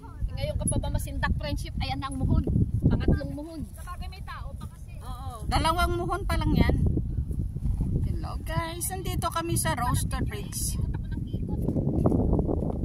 Ngayon ka pa ba masindak friendship? Ayan na ang muhon. Pangatlong muhon. Sabagay may tao pa kasi. Oo. Dalawang muhon pa lang yan. Hello guys, nandito kami sa Roaster Ridge. Ikot ako ng ikot.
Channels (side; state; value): both; identical; correlation 1.00